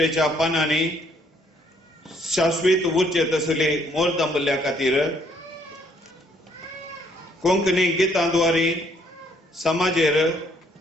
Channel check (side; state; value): both; normal; correlation 0.66